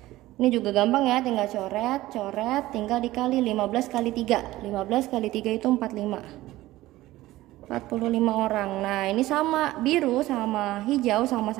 Ini juga gampang ya, tinggal coret, tinggal dikali 15 kali 3. 15 kali 3 itu 45. 45 orang. Nah ini sama, biru sama hijau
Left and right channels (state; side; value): quieter; left; 16.8 dB